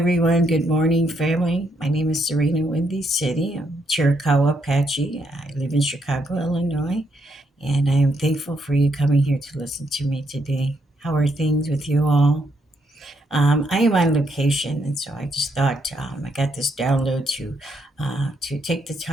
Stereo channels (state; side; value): normal; both; correlation 0.76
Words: Good morning, family. My name is Sarina Windy City. I'm Chiricahua Apache. I live in Chicago, Illinois, and I am thankful for you coming here to listen to me today. How are things with you all? I am on location, and so I just thought I got this download to take the